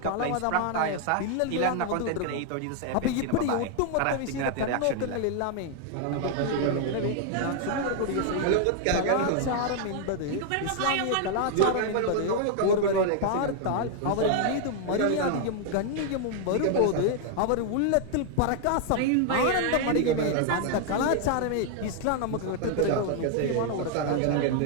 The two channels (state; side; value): different; both; correlation 0.00